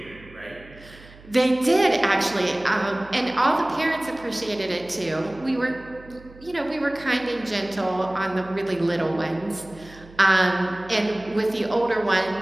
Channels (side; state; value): right; noise; hum, 22 dB below the sound